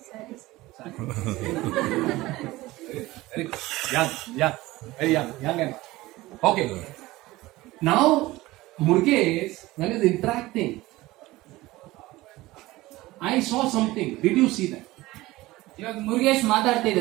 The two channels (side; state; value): left; quieter; 18.8 dB